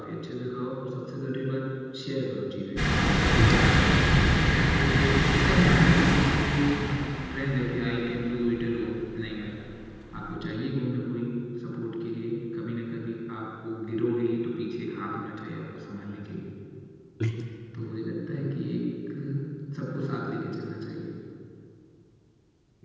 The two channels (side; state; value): both; identical; correlation 1.00